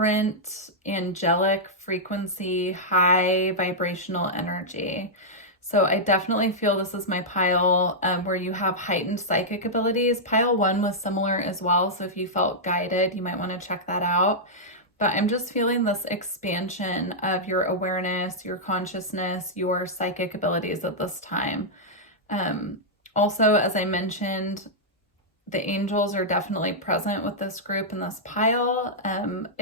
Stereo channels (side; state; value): both; normal; correlation -0.09